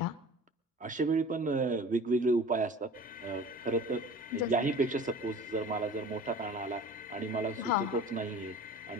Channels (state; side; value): normal; both; correlation 0.42